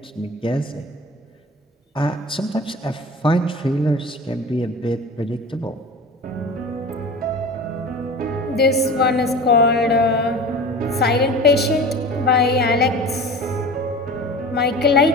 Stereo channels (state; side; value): normal; both; correlation 0.36